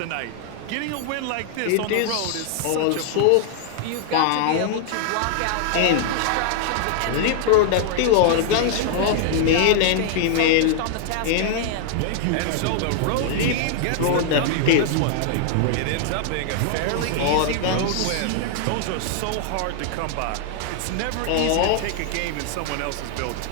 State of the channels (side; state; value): both; different; correlation 0.00